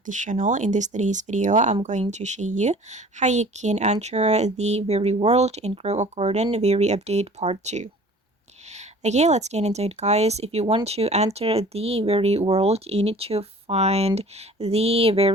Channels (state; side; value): normal; both; correlation 0.47